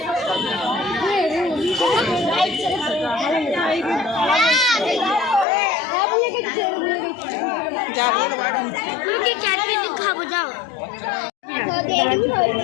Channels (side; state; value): right; drops out; at 5.5 s